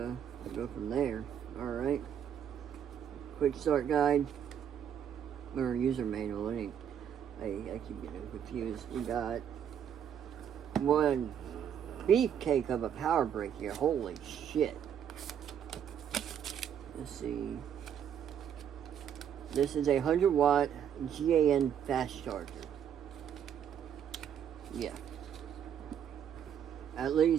we'll go from there. Alright. Quick start guide. Or user manual. I keep getting confused. We got one beefcake of a power brick here. Holy shit. Let's see. This is a 100-watt GAN fast charger. Yeah. At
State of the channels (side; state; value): left; quieter; 8.9 dB